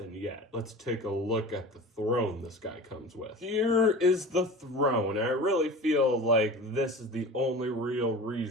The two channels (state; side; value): normal; both; correlation 0.36